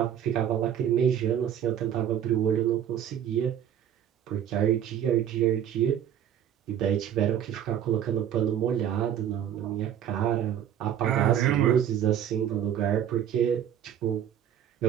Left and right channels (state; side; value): quieter; left; 10.0 dB